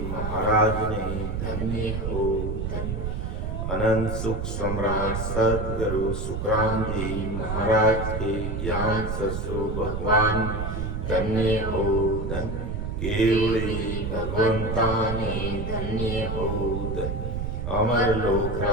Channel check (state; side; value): noise; right; rumble, 3 dB below the sound